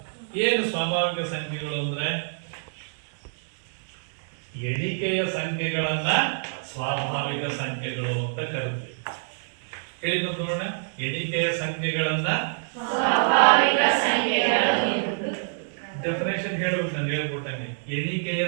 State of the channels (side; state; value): left; silent; digital silence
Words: ಏನು ಸ್ವಾಭಾವಿಕ ಸಂಖ್ಯೆಗಳು ಅಂದ್ರೆ? ಎಣಿಕೆಯ ಸಂಖ್ಯೆಗಳನ್ನ ಸ್ವಾಭಾವಿಕ ಸಂಖ್ಯೆಗಳು ಅಂತ ಕರಿತೀವಿ. ಹೇಳಿ ನೋಡೋಣ, ಎಣಿಕೆಯ ಸಂಖ್ಯೆಗಳನ್ನ ಸ್ವಾಭಾವಿಕ ಸಂಖ್ಯೆಗಳು. ಡೆಫಿನೇಷನ್ ಹೇಳ್ಬೇಕು, ನಾನು ಹೇಳ್ಕೊಟ್ಟಂಗೆ. ಎಣಿಕೆಯ